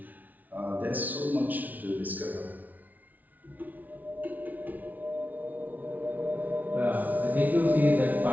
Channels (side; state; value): left; late; 0.078 ms